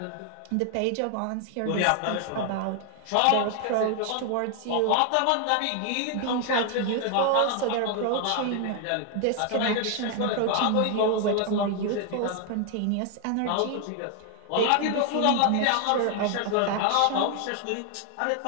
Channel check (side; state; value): both; different; correlation 0.00